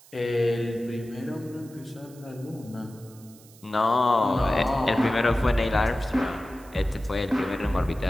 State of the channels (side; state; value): right; noise; hiss, 24 dB below the sound